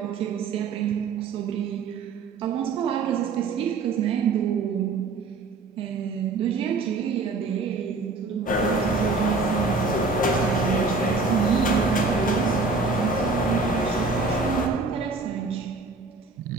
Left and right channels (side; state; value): left; quieter; 4.0 dB